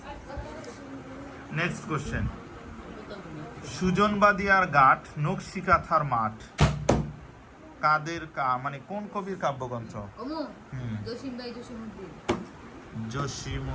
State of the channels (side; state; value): both; identical; correlation 1.00